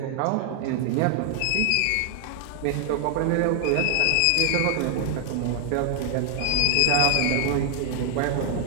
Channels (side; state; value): both; different; correlation 0.00